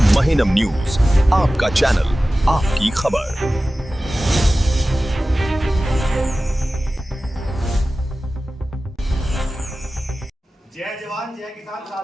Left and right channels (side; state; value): both; normal; correlation 0.96